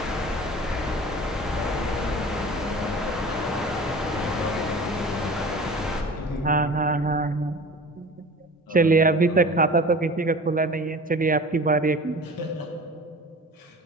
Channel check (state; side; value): normal; both; correlation 0.39